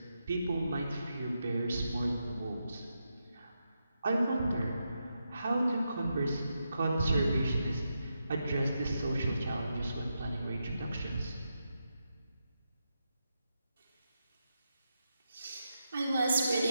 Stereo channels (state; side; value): inverted; both; correlation -0.85